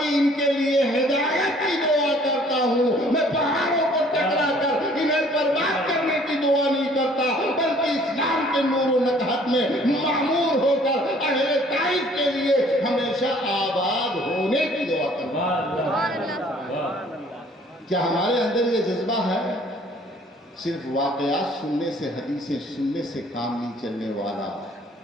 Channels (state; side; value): normal; both; correlation 0.57